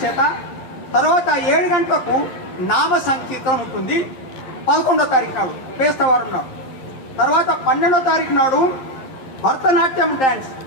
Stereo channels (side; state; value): right; late; 11 ms